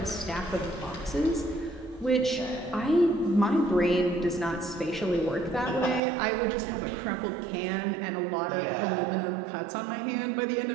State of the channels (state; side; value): drops out; left; at 6.0 s